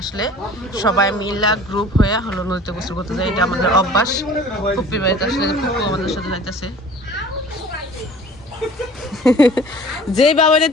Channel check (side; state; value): both; normal; correlation 0.46